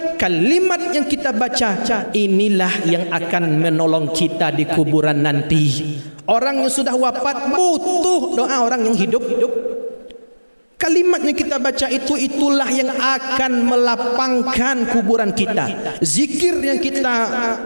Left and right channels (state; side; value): inverted; both; correlation -1.00